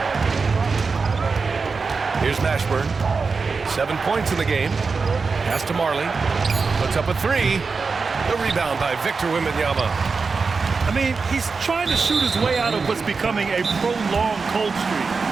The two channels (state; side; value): quieter; left; 4.6 dB